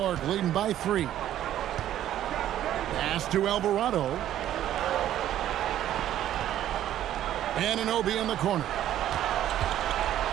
leading by 3. Pass to Alvarado. Anunoby in the corner.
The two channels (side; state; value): left; quieter; 12.0 dB